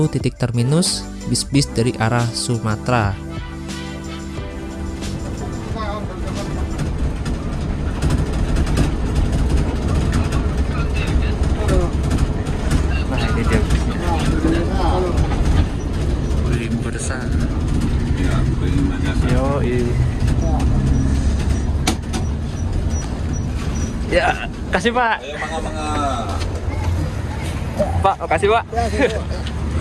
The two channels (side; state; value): both; identical; correlation 1.00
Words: titik terminus bis-bis dari arah Sumatera. Ya, kasih Pak. Pak, kasih Pak.